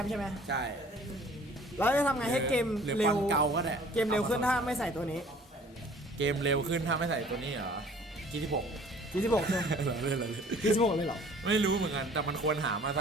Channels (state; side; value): normal; both; correlation 0.52